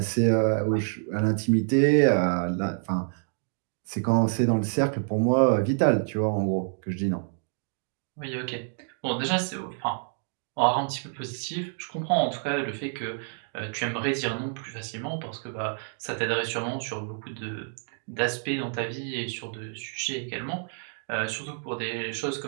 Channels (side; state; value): left; silent; 59 dB below the other